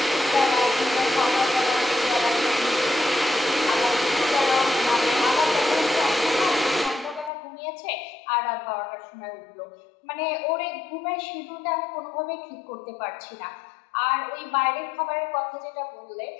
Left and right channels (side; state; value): right; drops out; at 7.3 s